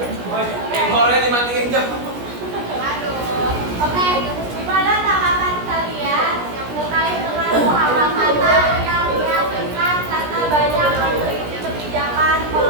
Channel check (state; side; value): late; left; 17 ms